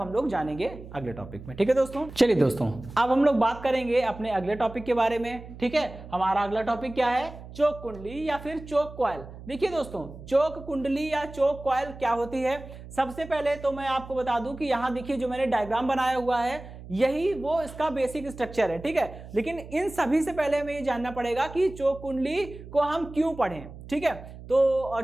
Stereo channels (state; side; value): noise; right; hum, 15 dB below the sound